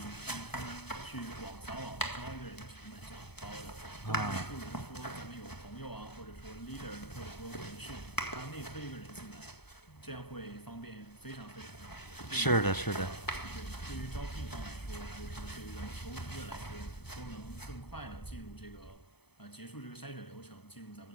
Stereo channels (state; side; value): late; right; 0.98 ms